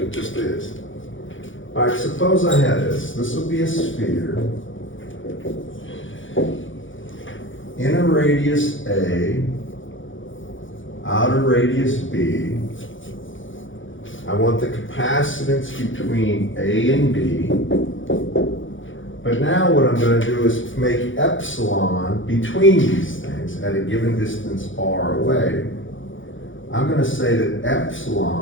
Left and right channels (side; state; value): right; late; 0.56 ms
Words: It just is. All right, suppose I had this. This will be a sphere in a radius A, outer radius B. I want the capacitance between A and B. But now what I'm going to do is make epsilon between these things at a given distance r away. I'm going to say that